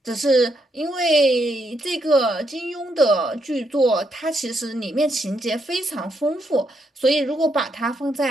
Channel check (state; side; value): normal; both; correlation 0.77